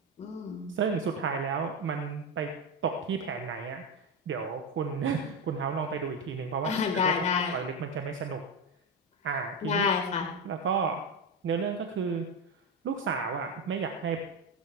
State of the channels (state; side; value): normal; both; correlation 0.12